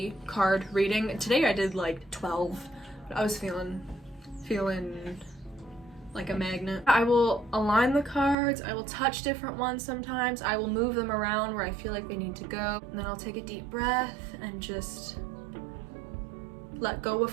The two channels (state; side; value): drops out; left; at 8.3 s